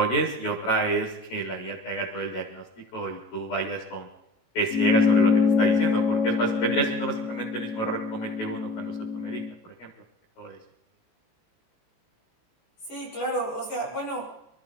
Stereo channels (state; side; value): late; right; 18 ms